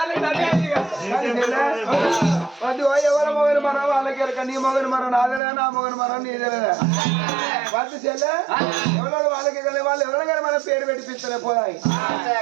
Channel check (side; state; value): left; drops out; at 5.4 s